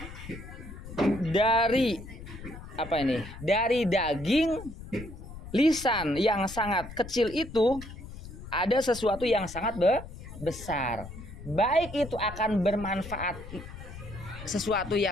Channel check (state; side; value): noise; left; rumble, 13 dB below the sound